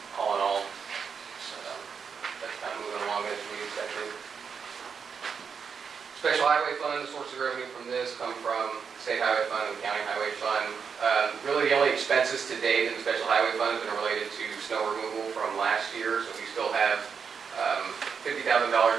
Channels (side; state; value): left; quieter; 6.3 dB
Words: all in all, that's kind of moving along as we expected. Special highway fund, the sources of revenue from this come from state highway fund and county highway fund. Really the only expenses to date in the special highway fund have been related to snow removal from last year, so we still have $50,000